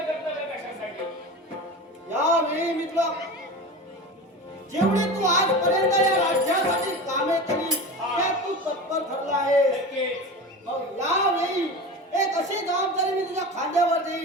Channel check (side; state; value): both; normal; correlation 0.30